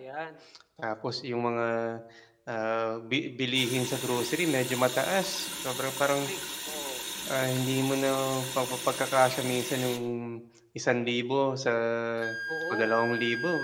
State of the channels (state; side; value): identical; both; correlation 1.00